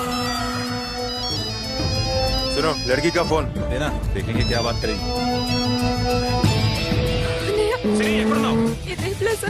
सुनो, लड़की का फोन देना, देखेंगे क्या बात करेंगे. సిరి, ఎక్కడున్నావు? ఇదే ప్లేస్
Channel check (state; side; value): identical; both; correlation 1.00